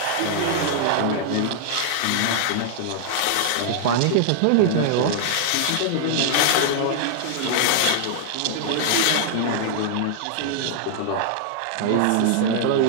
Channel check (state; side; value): different; both; correlation -0.01